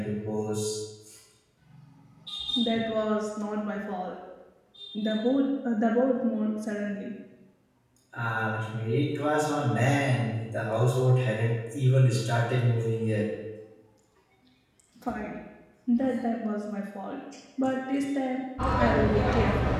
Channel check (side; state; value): both; identical; correlation 1.00